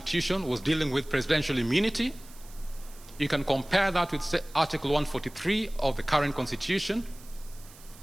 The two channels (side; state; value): right; noise; hiss, 21 dB below the sound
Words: was dealing with presidential immunity. You can compare that with Article 143 of the current Constitution,